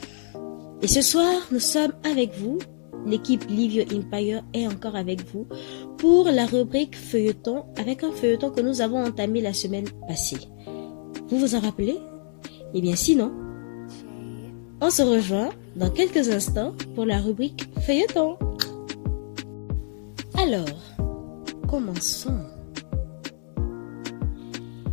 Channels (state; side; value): silent; right; digital silence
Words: Et ce soir, nous sommes avec vous. L'équipe Livio Empire est encore avec vous pour la rubrique feuilleton, avec un feuilleton que nous avons entamé la semaine passée. Vous vous en rappelez? Eh bien sinon, on se rejoint dans quelques instants pour la rubrique feuilleton. Alors, commençons.